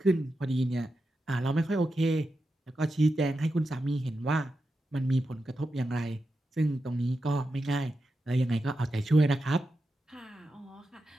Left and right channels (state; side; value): normal; both; correlation 0.89